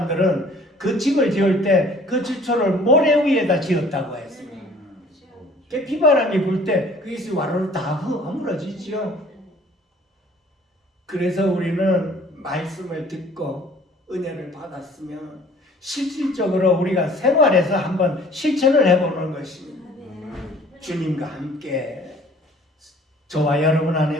그 집을 지을 때 그 기초를 모래 위에다 지었다고 했습니다. 그 비바람이 불 때 그것이 와르르 다 허물어지죠. 그래서 우리는 말씀을 듣고 은혜를 받았으면 실질적으로 우리가 생활에서 한번 실천을 해보는 것입니다. 주님과 함께 저와 여러분 안에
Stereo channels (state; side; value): normal; both; correlation 0.53